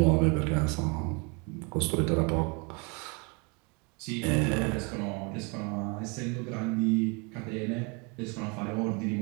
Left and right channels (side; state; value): left; quieter; 30.7 dB